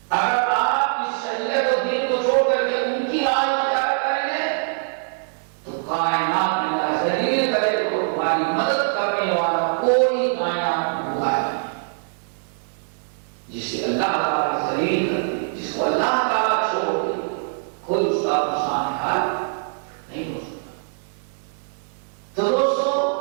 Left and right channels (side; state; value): left; silent; digital silence